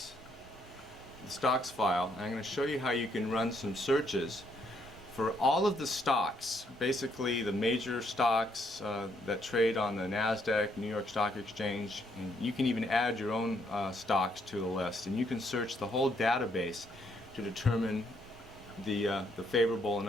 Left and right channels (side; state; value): both; normal; correlation 0.72